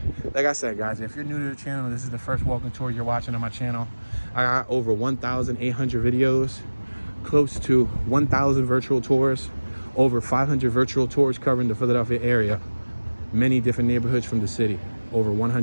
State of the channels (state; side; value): inverted; both; correlation -1.00